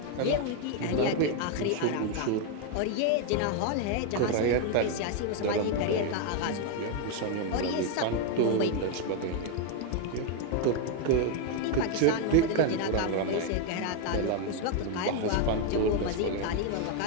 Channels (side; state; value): both; different; correlation 0.01